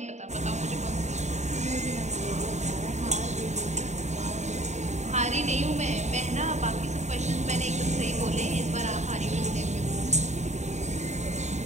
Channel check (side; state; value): left; late; 0.33 ms